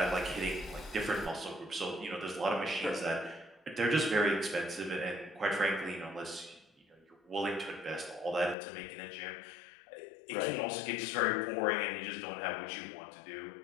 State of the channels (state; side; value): drops out; right; at 8.6 s